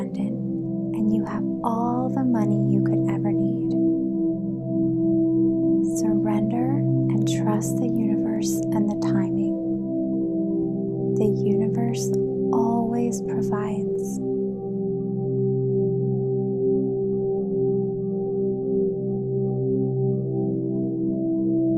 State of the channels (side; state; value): both; identical; correlation 1.00